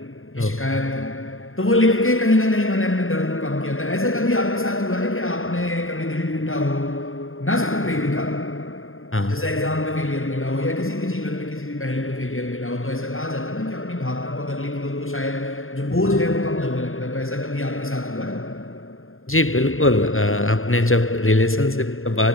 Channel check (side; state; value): right; late; 0.60 ms